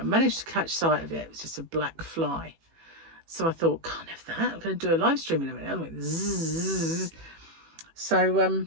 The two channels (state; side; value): late; left; 18 ms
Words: managed to catch sight of it. It was just a black fly. So I thought, can't have that. I'm going to do a live stream in a minute. I went zzz. So